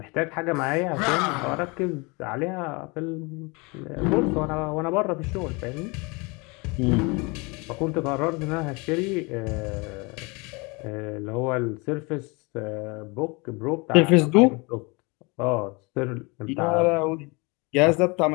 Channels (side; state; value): right; quieter; 27.9 dB